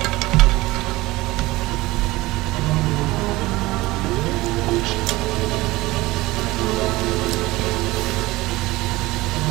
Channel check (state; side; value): quieter; left; 19.6 dB